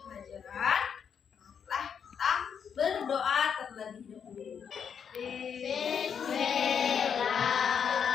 pelajaran, marilah kita berdoa terlebih dahulu.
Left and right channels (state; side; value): quieter; right; 7.3 dB